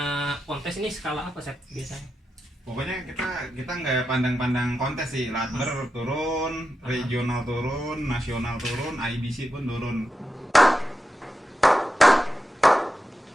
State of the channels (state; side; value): normal; both; correlation 0.89